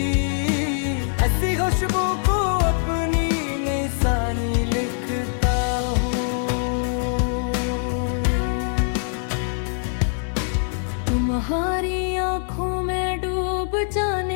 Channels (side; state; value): right; silent; 63 dB below the other